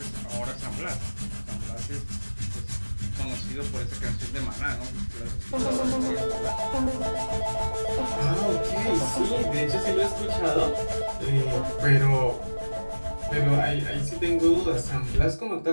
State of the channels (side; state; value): both; inverted; correlation -1.00